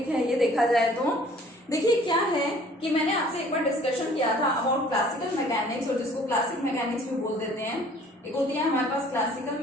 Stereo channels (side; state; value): both; normal; correlation 0.54